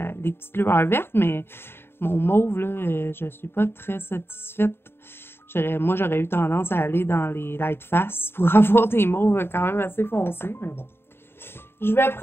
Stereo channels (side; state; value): right; late; 0.11 ms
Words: petites lueurs vertes, mais mon mauve, là, je suis pas très satisfaite. Moi, j'aurais eu tendance à aller dans les light face pour avoir des mauves quand même assez foncés, mais bon. Je vais